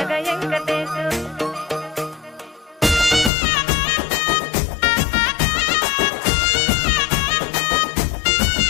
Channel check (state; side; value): drops out; right; at 3.3 s